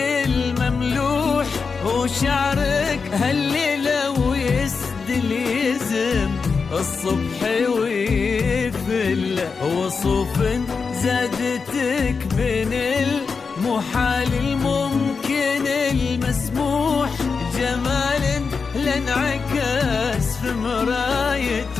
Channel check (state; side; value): quieter; right; 5.1 dB